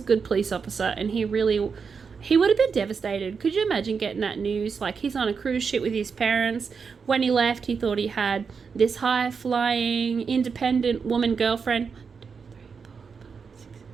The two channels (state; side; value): quieter; left; 5.7 dB